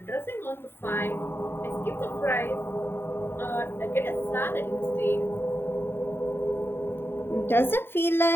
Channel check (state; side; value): late; right; 0.11 ms